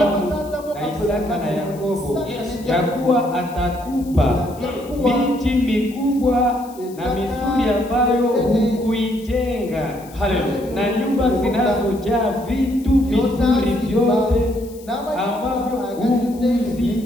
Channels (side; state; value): left; noise; hiss, 23 dB below the sound